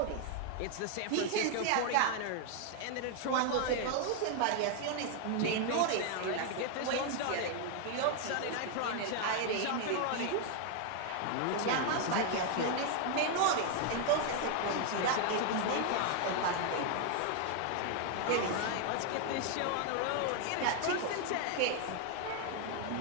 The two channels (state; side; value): different; both; correlation 0.00